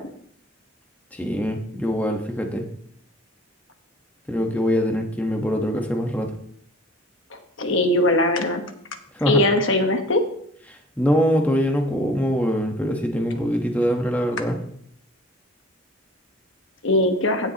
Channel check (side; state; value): both; normal; correlation 0.46